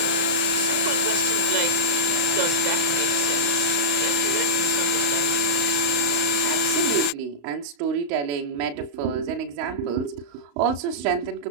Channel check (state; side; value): late; left; 34 ms